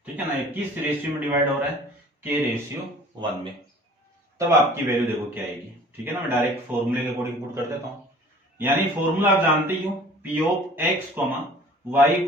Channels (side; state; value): both; normal; correlation 0.48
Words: ठीक है ना। ये किस रेशियो में डिवाइड हो रहा है? K/1 में। तब आपकी वैल्यू देखो क्या आएगी, ठीक है ना। मैं डायरेक्ट फॉर्मूले के अकॉर्डिंग पुट कर देता हूं। यानी फॉर्मूला आप जानते ही हो, P of x, y,